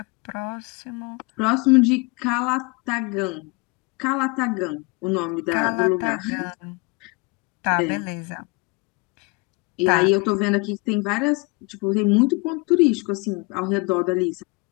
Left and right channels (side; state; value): right; quieter; 28.5 dB